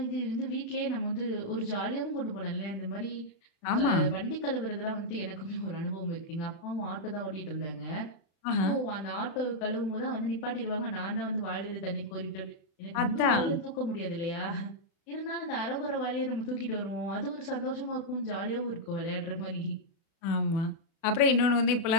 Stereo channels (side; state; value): right; late; 36 ms